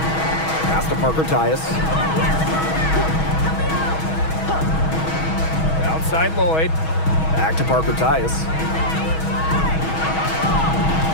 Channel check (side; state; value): right; late; 6.2 ms